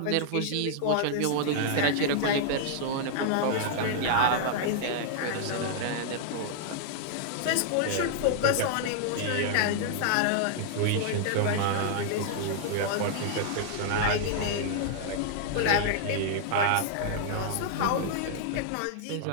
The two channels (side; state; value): both; different; correlation -0.01